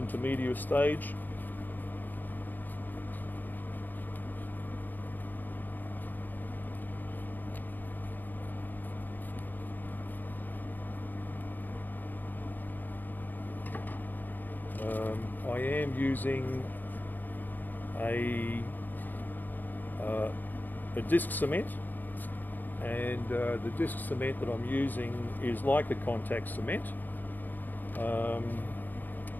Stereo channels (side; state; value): right; late; 0.087 ms